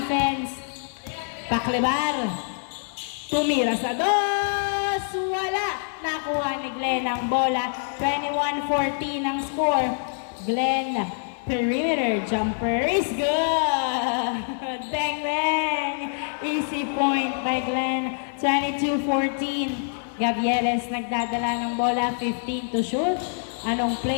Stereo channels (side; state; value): right; silent; 61 dB below the other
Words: Paklebar. Tumira sa dos. Wala. Nakuha ni Glenn ang bola. 21-14 ang score. Glenn, perimeter jumper is good. Bang, bang. Easy point by Glenn. 22-14. Gavieres nagdadala ng bola. 15 to shoot. Anong